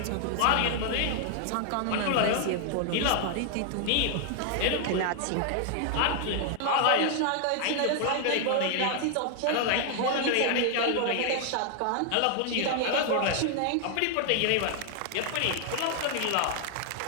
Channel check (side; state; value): both; different; correlation 0.00